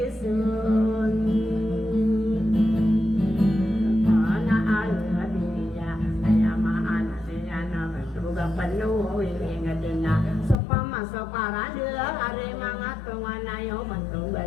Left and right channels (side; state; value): right; drops out; at 10.6 s